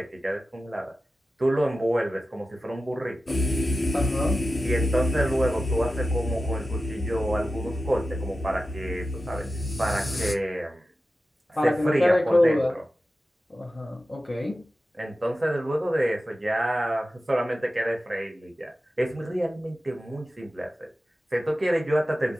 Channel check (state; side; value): normal; both; correlation 0.93